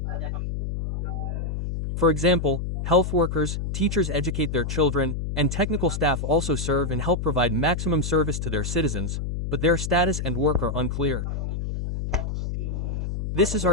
For example, health workers, teachers educate their children, and technical staff also serve and help provide maximum service to their citizens, but their status and work are unclear. This is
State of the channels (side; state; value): left; noise; hum, 3 dB below the sound